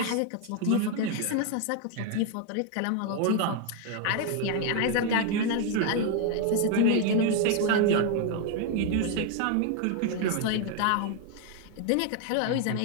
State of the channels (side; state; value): both; different; correlation 0.00